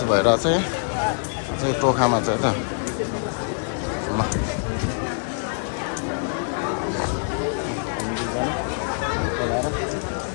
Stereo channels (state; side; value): silent; right; 62 dB below the other